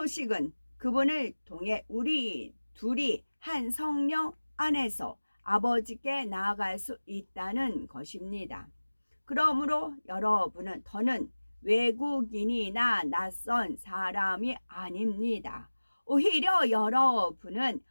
그분을 통해 우리 둘이 한 성령 안에서 아버지께 나아갈 수 있다는 것입니다. 그러므로 여러분은 더는 외국인이나 낯선 사람이 아닙니다. 오히려 여러분은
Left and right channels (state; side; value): inverted; both; correlation -1.00